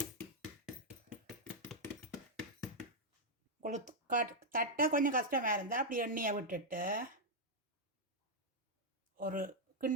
தட்டை கொஞ்சம் கஷ்டமாக இருந்தால் அப்படி எண்ணெயை விட்டுட்டு ஒரு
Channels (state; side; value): normal; both; correlation -0.02